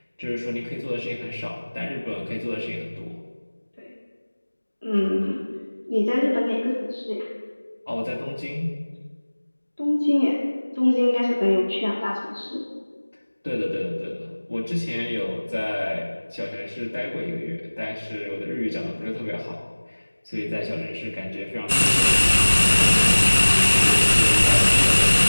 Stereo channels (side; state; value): both; inverted; correlation -1.00